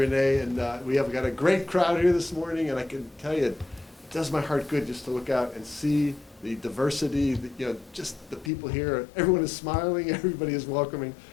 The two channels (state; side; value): drops out; right; at 8.5 s